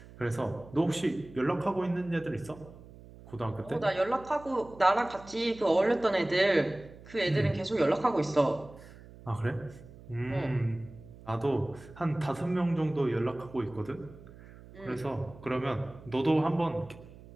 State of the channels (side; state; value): right; noise; hum, 19 dB below the sound